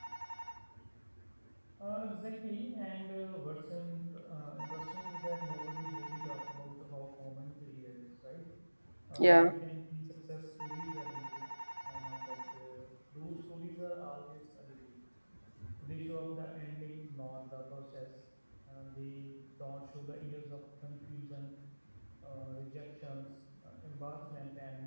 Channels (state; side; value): inverted; both; correlation -1.00